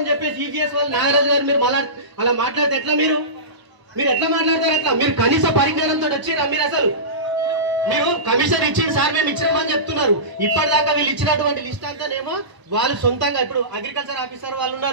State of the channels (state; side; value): late; left; 1.0 ms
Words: చెప్పేసి ఈజీఎస్ వాళ్ళు నాగరాజు గారు మీరు అలా మాట్లాడితే ఎట్లా? మీరు ఎట్లా మాట్లాడతారు? ఎట్లా? మీరు కనీస పరిజ్ఞానంతో వచ్చిరా? మీరు కమిషనర్ ఇచ్చిన సార్ మేము ఇచ్చినామని చెప్తున్నారు. ఇప్పటిదాకా వీళ్ళు ఇచ్చినటువంటి లిస్ట్ అంతానేమో వాళ్ళు సొంతంగా, ఇప్పుడు అగ్రికల్చర్ ఆఫీసర్ వాళ్ళు